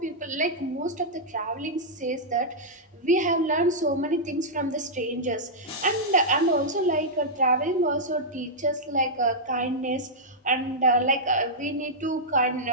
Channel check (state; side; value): normal; both; correlation -0.09